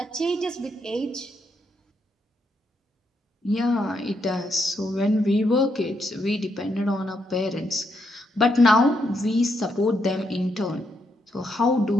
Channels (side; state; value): both; normal; correlation 0.79